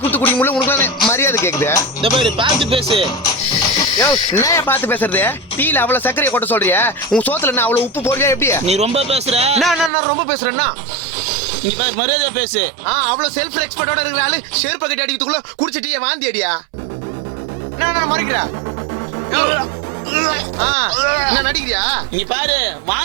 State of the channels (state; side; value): drops out; left; at 9.9 s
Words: கொடுத்து குடிக்க முடியல, உனக்கு மரியாதை கேக்குது. இந்த பாரு, பார்த்து பேசு. என்ன பார்த்து பேசுறது? டீல அவ்வளவு சர்க்கரையை கொட்ட சொல்றியா? உன் சோத்துல என்ன அவ்வளவு உப்பு போடுறியா? எப்படி நீ ரொம்ப பேசுற? நான் ரொம்ப பேசுறேன்னா நீ பாரு, மரியாதை பேசு. அவ்வளவு செல்ஃப் ரெஸ்பெக்டோட இருக்கிற ஆளு செருப்பு கட்டி அடிக்கிறதுக்குள்ள குடிச்சு டீயை வாந்தி அடியா? நான் மறைக்கிறா? என்ன நடிக்கிறியா? நீ பாரு,